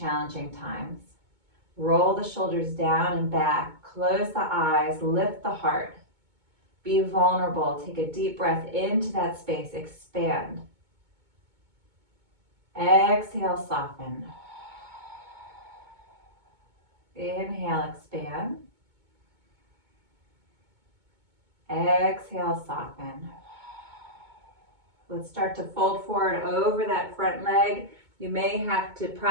times. Roll the shoulders down and back. Close the eyes. Lift the heart. Be vulnerable. Take a deep breath into that space. Expand. Exhale, soften. Inhale, expand. Exhale, soften. Let's start to fold forward over that front leg. You may have to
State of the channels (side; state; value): left; late; 2.2 ms